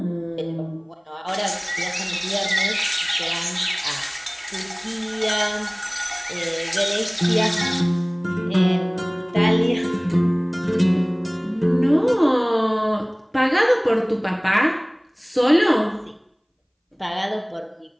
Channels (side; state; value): both; identical; correlation 1.00